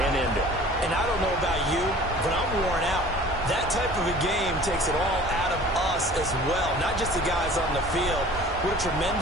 and end it. And I don't know about you, but I'm worn out. That type of a game takes it all out of us as well, not just the guys on the field. What a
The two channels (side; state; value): both; normal; correlation 0.46